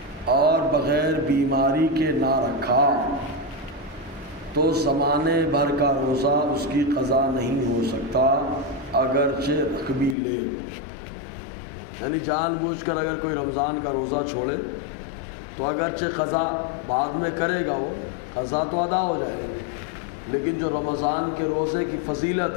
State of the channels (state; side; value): drops out; right; at 10.2 s